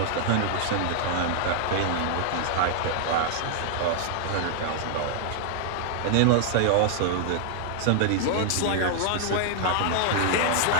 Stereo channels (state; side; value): different; both; correlation -0.01